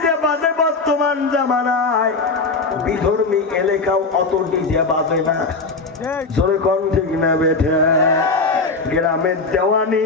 বাজে বর্তমান জামানায় বিধর্মী এলাকাও অত ডিজে বাজে না জোরে কোন ঠিক না বেঠে গ্রামের দেওয়ানি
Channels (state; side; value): quieter; right; 3.9 dB